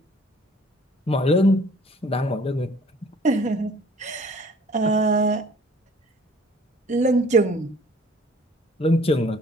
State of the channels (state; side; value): normal; both; correlation 0.53